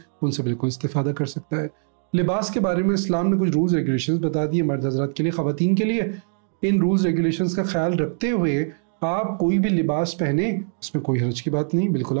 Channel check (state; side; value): silent; left; digital silence